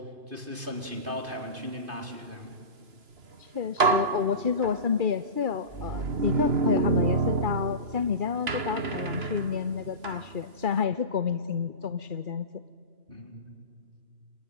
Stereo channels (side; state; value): left; late; 3.0 ms